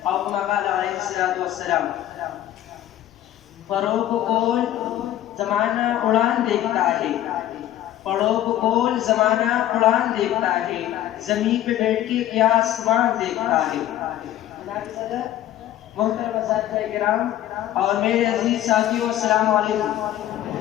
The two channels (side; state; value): right; quieter; 12.9 dB